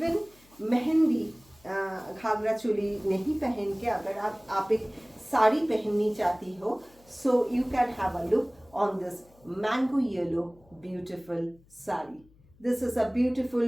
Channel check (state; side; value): noise; left; hum, 29 dB below the sound